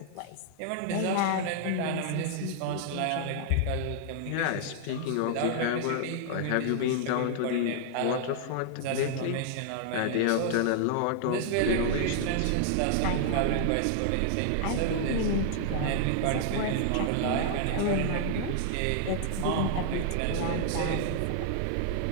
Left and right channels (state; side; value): different; both; correlation -0.01